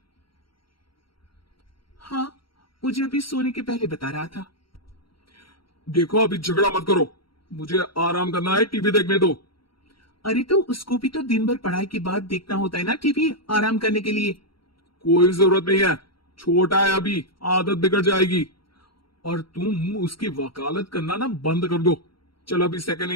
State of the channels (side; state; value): right; late; 0.74 ms